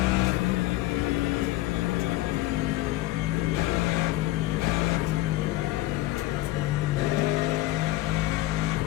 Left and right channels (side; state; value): right; quieter; 17.2 dB